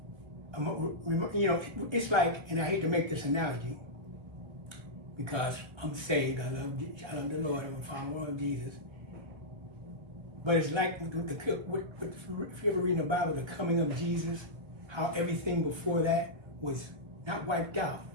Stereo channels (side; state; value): left; late; 1.6 ms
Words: it's like, and I hate to make this analogy because I'm saved, I love the Lord, I'm a follower of Jesus. But it's like if you ever read in the Bible, the coming of Jesus, how everything before that was not wiped out,